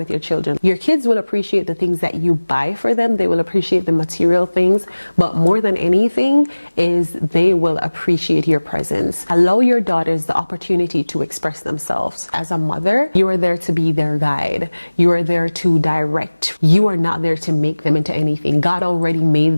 your children. Your kids will appreciate the things that you buy for them. They will appreciate the material things, but more than anything is they will appreciate your presence. Allow your daughters the opportunity to express themselves. As a mother, you are there to be their guide. You are there to direct. You are not there to make them into anything. God already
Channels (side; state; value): both; inverted; correlation -1.00